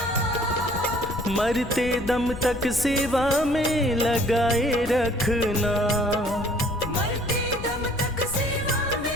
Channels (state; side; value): noise; left; rumble, 11 dB below the sound